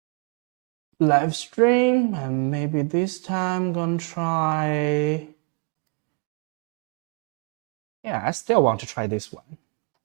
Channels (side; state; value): left; quieter; 32.5 dB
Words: live stream, and maybe this time I'm gonna try. Yeah, I still want to try this one.